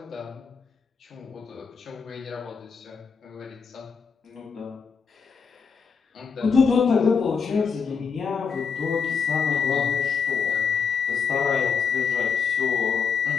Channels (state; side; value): quieter; right; 6.1 dB